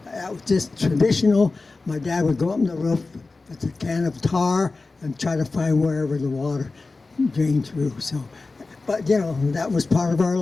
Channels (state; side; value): quieter; right; 3.7 dB